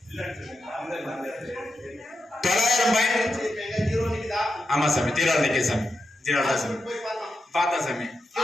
ஆமா சாமி, ஜீரோ நிக்க சாமி, ஜீரோ தான் சாமி. பார்த்தா சாமி,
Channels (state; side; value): normal; both; correlation 0.87